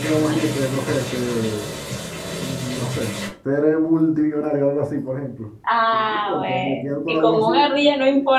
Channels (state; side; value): identical; both; correlation 1.00